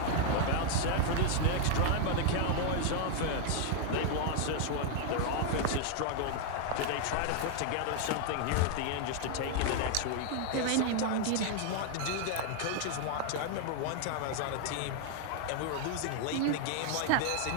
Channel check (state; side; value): different; both; correlation 0.00